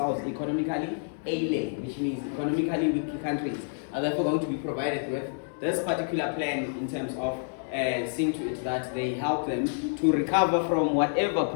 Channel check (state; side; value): silent; right; digital silence